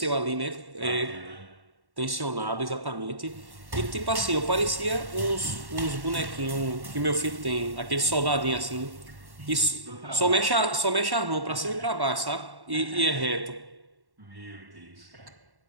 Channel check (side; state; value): left; late; 1.1 ms